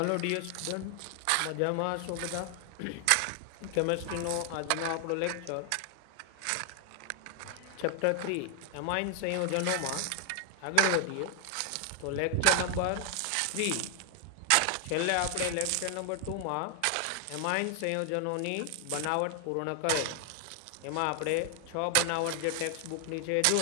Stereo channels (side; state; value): both; different; correlation 0.00